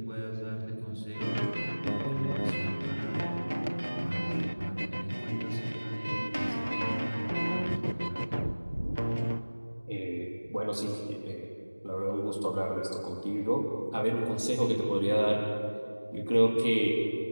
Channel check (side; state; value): both; inverted; correlation -1.00